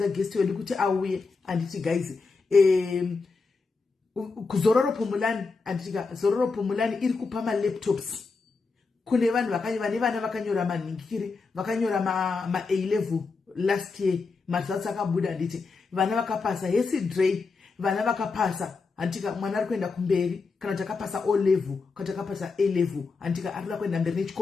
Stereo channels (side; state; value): right; quieter; 4.4 dB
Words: guest wedu kuti auye anditi guys kuzororo pomulani anditika zororo pomulani iri kupa laptops kune vanhu vane vana vakanyora manhingiri vakanyora ma A-level last year results akabuda nditi vana vakapasa Hesi Dre vana vakapasa antika mwana ari kuenda kumberi kana takapasa O level kana takapasa A level antika ari kuenda mberi